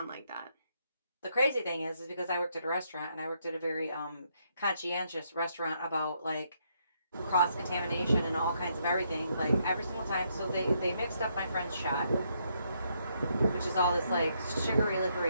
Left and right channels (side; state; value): both; inverted; correlation -0.75